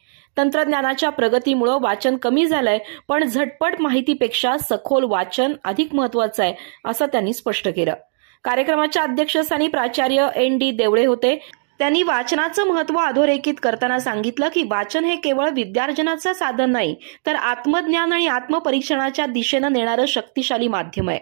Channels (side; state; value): left; silent; digital silence